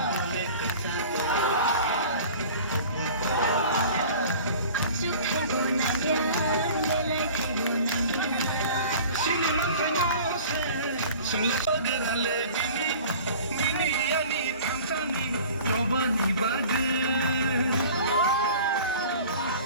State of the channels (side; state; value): both; inverted; correlation -0.43